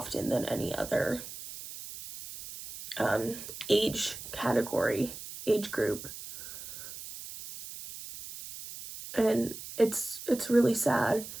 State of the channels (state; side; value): noise; right; hiss, 11 dB below the sound